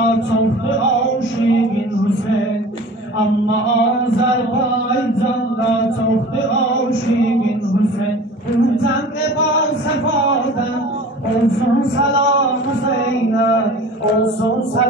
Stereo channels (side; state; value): both; normal; correlation 0.41